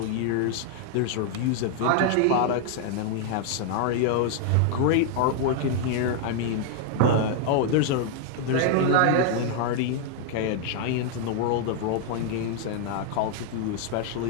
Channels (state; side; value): different; both; correlation 0.00